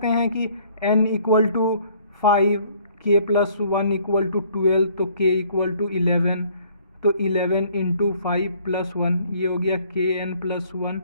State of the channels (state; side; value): inverted; both; correlation -0.60